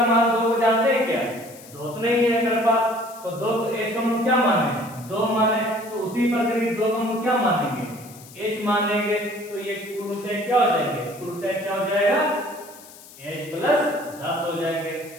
मान 2 को जानते हैं क्या, 2 तो नहीं है मेरे पास, तो 2 एज को हम क्या माने 2 माने, तो उसी प्रकार 2 को हम क्या मानेंगे एच मानेंगे, तो ये कुल ऊंचाई क्या हो जाएंगे, कुल ऊंचाई क्या हो जाएगा h प्लस 10 हो जाएंगे,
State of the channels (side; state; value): left; noise; hiss, 20 dB below the sound